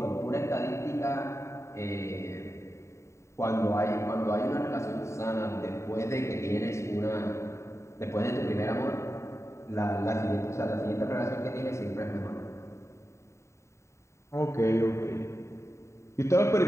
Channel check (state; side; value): late; right; 0.14 ms